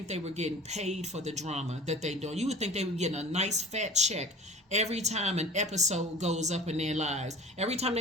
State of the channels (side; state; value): both; normal; correlation 0.40